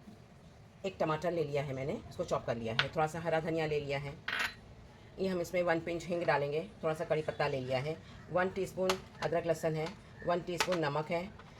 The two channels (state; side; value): identical; both; correlation 1.00